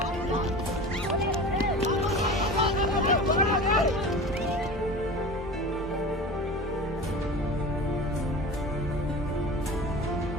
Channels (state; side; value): normal; both; correlation 0.34